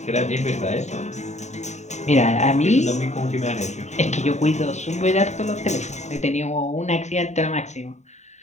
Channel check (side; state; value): right; late; 0.34 ms